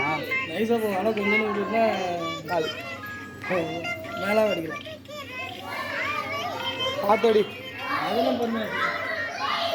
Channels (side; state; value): both; identical; correlation 1.00